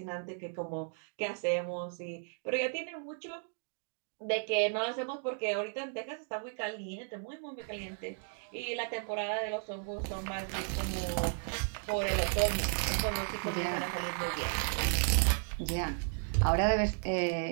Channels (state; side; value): silent; left; 55 dB below the other